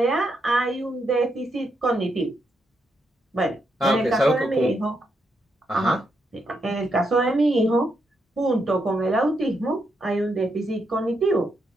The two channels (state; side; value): normal; both; correlation 0.80